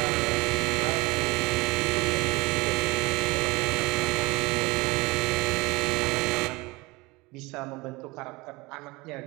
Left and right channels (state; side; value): quieter; left; 23.1 dB